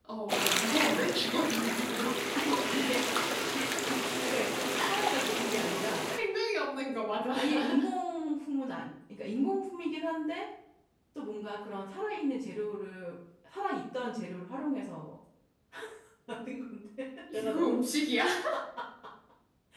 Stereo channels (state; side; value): identical; both; correlation 1.00